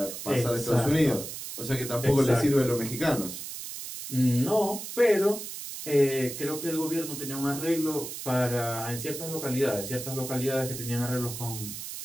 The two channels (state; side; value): noise; right; hiss, 8 dB below the sound